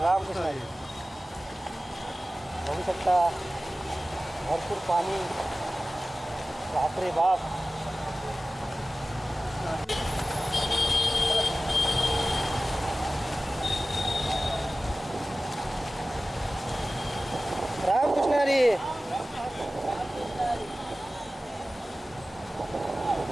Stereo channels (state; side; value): normal; both; correlation 0.96